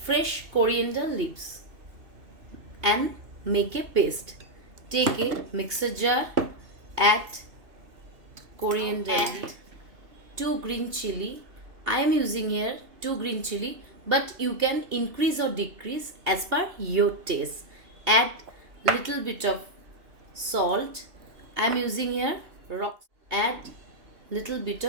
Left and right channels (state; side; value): late; left; 2.8 ms